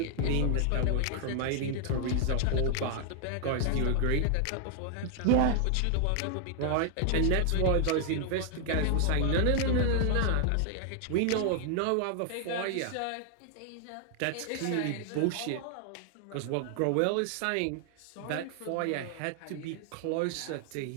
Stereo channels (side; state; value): both; different; correlation 0.00